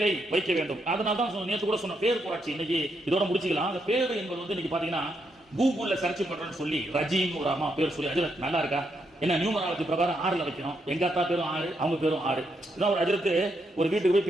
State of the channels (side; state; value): both; normal; correlation 0.79